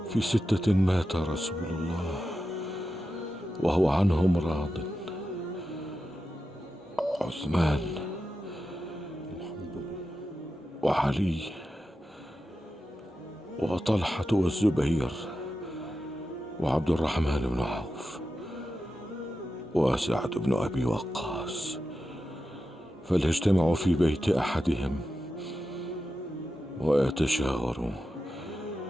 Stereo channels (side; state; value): both; normal; correlation 0.90